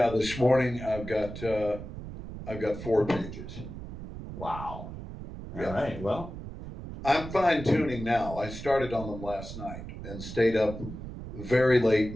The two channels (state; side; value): noise; right; rumble, 10 dB below the sound